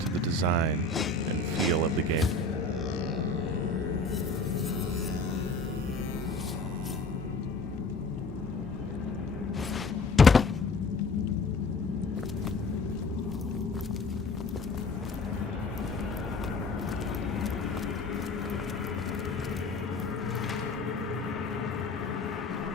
the design and feel of the game.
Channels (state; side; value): quieter; right; 3.4 dB